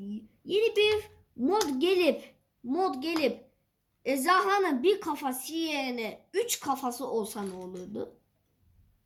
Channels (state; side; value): identical; both; correlation 1.00